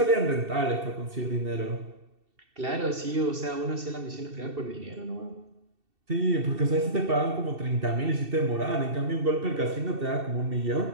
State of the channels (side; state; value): left; late; 2.7 ms